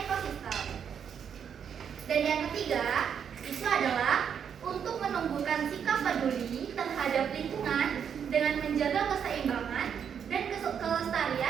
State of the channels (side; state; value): left; quieter; 7.8 dB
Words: Dan yang ketiga itu adalah untuk menumbuhkan sikap peduli terhadap lingkungan dengan menjaga keseimbangan dan